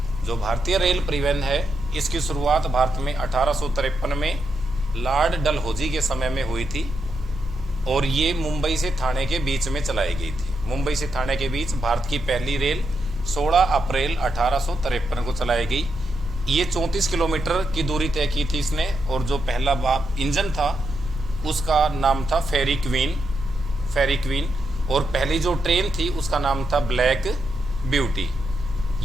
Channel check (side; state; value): both; normal; correlation 0.83